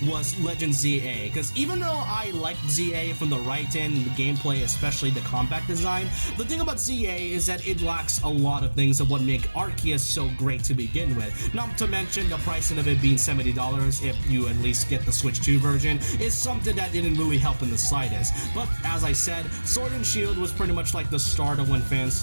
was Legend ZA, because even though I liked ZA from the write-in, the gameplay, especially the combat design, the thing about ZA is that it lacks a lot of things of what make Arceus so great to begin with. Not to mention the pricing of it being $70 if you at least get the Switch 2 version is something that didn't really help in the slightest. But as I said, Sword and Shield was pretty much like the start of when fans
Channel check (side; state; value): both; inverted; correlation -1.00